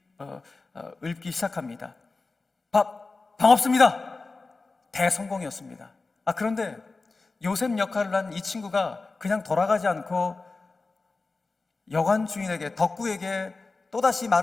시작합니다. 방 없습니다. 대성공이었습니다. 그런데 요셉 역할을 한 이 친구가 그냥 돌아가지 않고 여관 주인에게, 덕구에게 또다시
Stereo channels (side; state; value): right; quieter; 3.8 dB